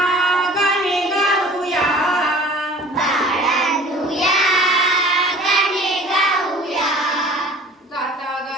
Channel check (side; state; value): both; normal; correlation 0.46